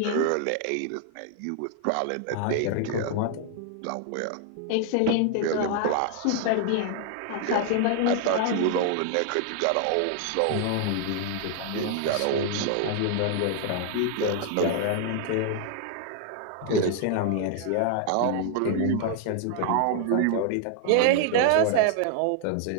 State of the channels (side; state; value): both; different; correlation 0.00